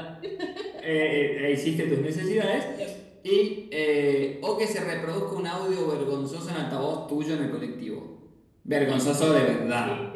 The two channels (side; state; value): both; identical; correlation 1.00